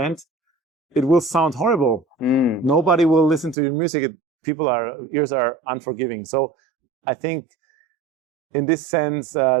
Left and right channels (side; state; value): left; drops out; at 3.6 s